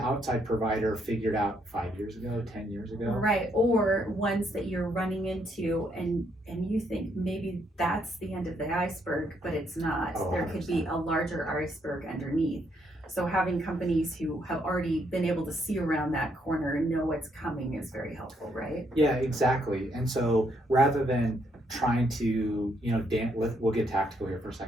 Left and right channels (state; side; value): normal; both; correlation 0.74